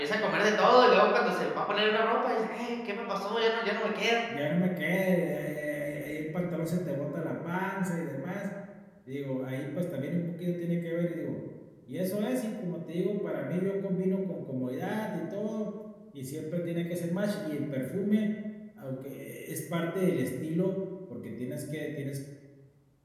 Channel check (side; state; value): both; identical; correlation 1.00